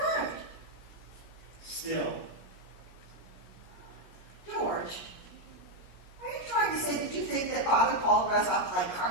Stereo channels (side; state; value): right; late; 16 ms